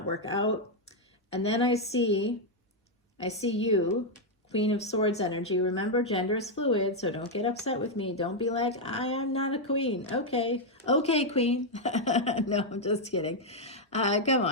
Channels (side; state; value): both; normal; correlation 0.00